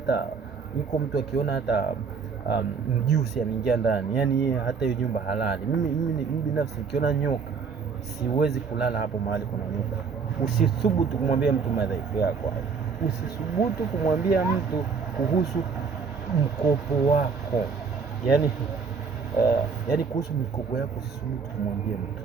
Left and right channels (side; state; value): left; quieter; 5.5 dB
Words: mtu akiona hata mjusi ameingia ndani, yani yeye hata hiyo nyumba halali. Mimi binafsi nikiona nyoka siwezi kulala hapo mahali kuna nyoka. Usithubutu kumwambia mtu madhaifu yako. Usithubutu kumwambia mtu kuhusu mkopo wako, yani kuhusu mikopo yako usithubutu kumwambia mtu.